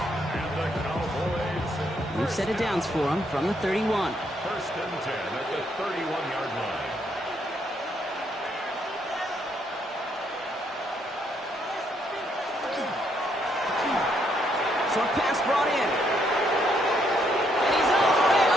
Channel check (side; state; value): both; normal; correlation 0.73